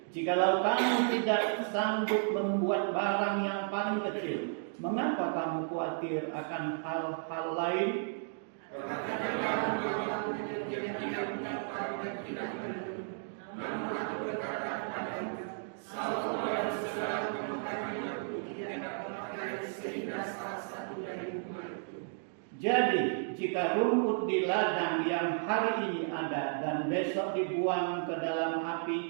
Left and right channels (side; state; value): left; silent; digital silence